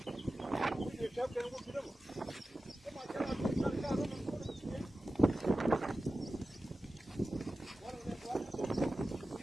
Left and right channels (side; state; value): both; normal; correlation 0.95